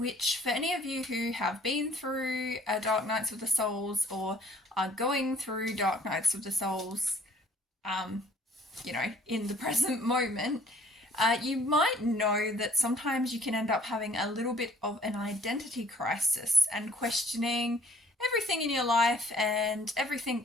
for any of you who have been through Dark Nights of the Souls or are going through Dark Nights of the Souls, um, in the present moment, you might know that sometimes you can end up having a little bit of an identity crisis and questioning everything in your life and everything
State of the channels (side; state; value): both; normal; correlation 0.58